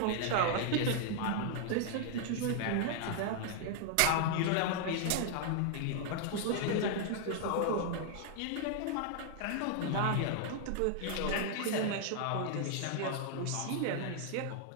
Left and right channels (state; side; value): different; both; correlation 0.00